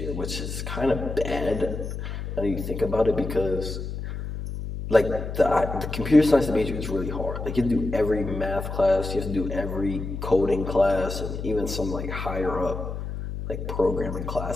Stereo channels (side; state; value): left; noise; hum, 6 dB below the sound